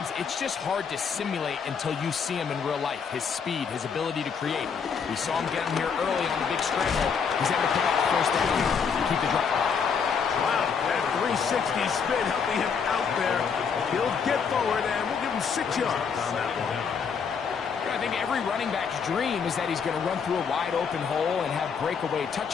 it's just hard to simulate until you see him in real life. His speed, his ability to create. We saw him get him here early on the big scramble. He's able to pick up the first down to keep the drive alive. Wow, that 360 spin helping him out there. He'll get forward, and we'll give him 6 yards on that one. I think every running back's dream is that he's going to run through a wide-open hole and have breakaway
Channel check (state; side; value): quieter; right; 6.3 dB